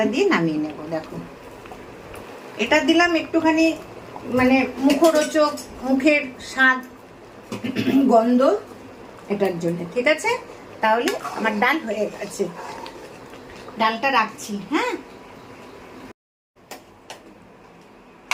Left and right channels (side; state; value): both; identical; correlation 1.00